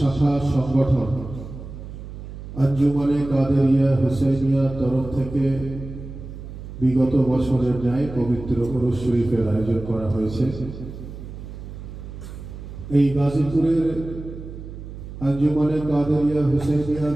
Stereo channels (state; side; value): noise; right; hum, 12 dB below the sound